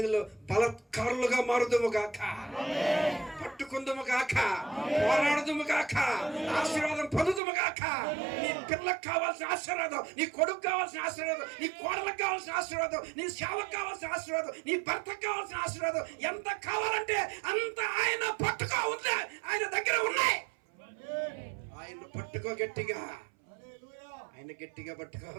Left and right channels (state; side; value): drops out; left; at 7.4 s